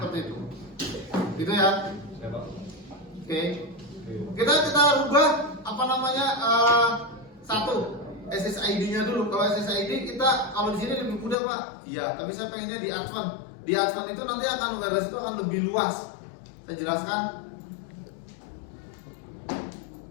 itu. Gitu ya. Oke. Kita rubah apa namanya satu SSID-nya dulu. Kalau SSID kita kalau di sini lebih mudah Pak. Iya, tapi saya pengennya di advance. Di advance itu nanti akan wireless itu akan lebih luas. Saya jelaskan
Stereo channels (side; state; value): right; drops out; at 11.4 s